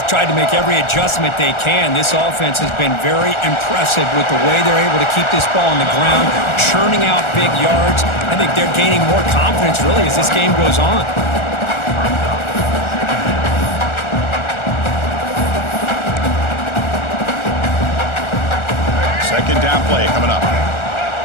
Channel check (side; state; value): right; late; 1.4 ms